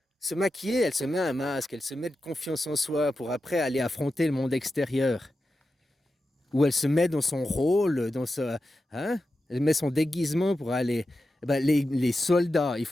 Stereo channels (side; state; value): both; normal; correlation 0.91